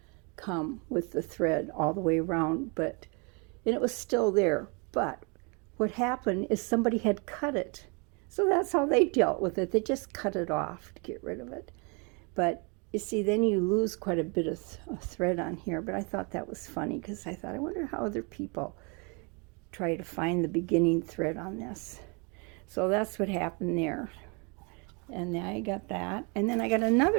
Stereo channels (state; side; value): quieter; left; 32.6 dB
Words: come with the thread all the way around, and it was still there. But what happened is somebody had cut it. So that's how they dealt with it. They just cut it off to get rid of it. But you see, then you lose quite a bit of thread on here. But I thought that was funny, because I thought, I wonder how other people try to find the beginning thread on this. So that's what happened there. And I got that. And then I got